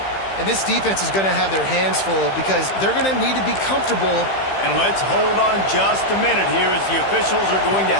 And this defense is going to have their hands full because they're going to need to be comfortable. And let's hold on just a minute here as the officials are going to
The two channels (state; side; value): late; right; 15 ms